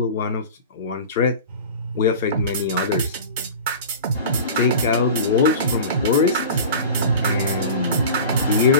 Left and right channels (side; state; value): both; inverted; correlation -0.36